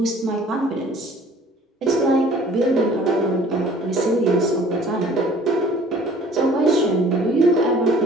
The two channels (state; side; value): normal; both; correlation 0.52